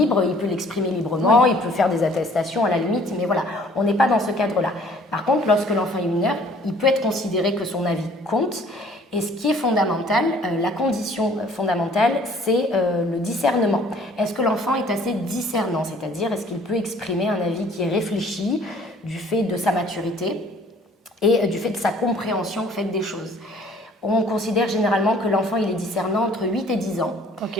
il peut l'exprimer librement, Oui. il peut faire des attestations à la limite, mais voilà, on n'est pas dans ce cadre-là. Par contre, lorsque l'enfant est mineur, il peut être considéré que son avis compte. Et ce qui est fondamental, la condition fondamentale, c'est le discernement. Est-ce que l'enfant est assez discernant? C'est-à-dire, est-ce qu'il peut exprimer un avis qui est réfléchi du fait de sa maturité et du fait de sa compréhension au fait des choses? On considère généralement que l'enfant il est discernant entre 8 et 10 ans.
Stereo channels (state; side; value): normal; both; correlation 0.56